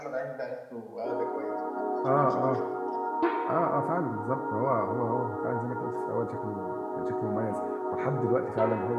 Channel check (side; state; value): both; identical; correlation 1.00